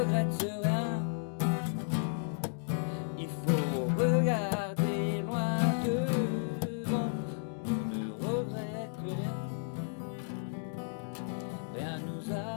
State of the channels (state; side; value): silent; right; digital silence